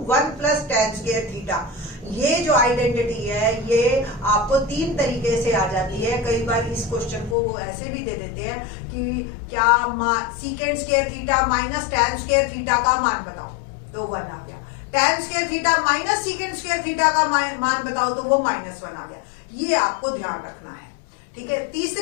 1 plus tan square theta. ये जो आइडेंटिटी है ये आपको 3 तरीके से आ जाती है। कई बार इस क्वेश्चन को वो ऐसे भी दे देते हैं कि क्या सीकेंड square theta minus ten square theta का मान बताओ, तो 1 आ गया। Ten square theta minus सीकेंड square theta का मान बताओ, तो वो -1 आ गया। ये आपको ध्यान रखना है। ठीक है,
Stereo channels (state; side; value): drops out; right; at 7.4 s